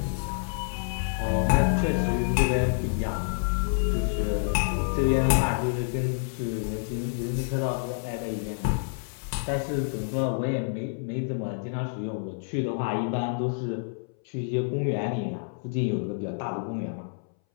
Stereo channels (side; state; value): right; silent; 59 dB below the other